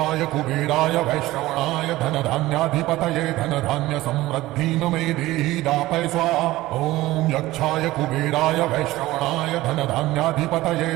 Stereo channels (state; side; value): quieter; left; 17.4 dB